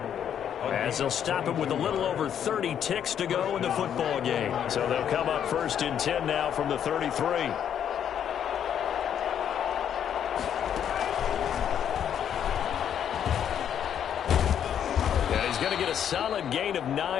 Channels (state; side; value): quieter; right; 9.1 dB